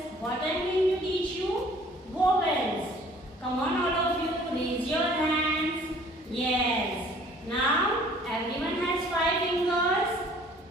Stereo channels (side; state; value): both; normal; correlation 0.54